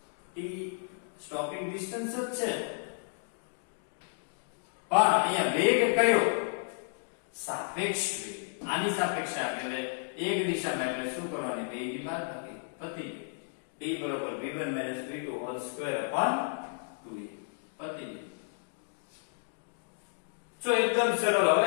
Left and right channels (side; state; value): right; silent; digital silence